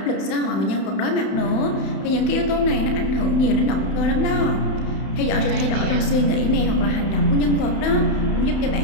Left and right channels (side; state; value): right; late; 31 ms